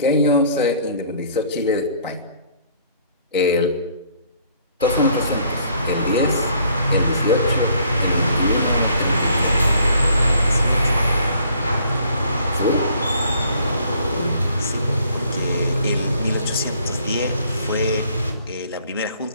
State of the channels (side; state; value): both; inverted; correlation -0.60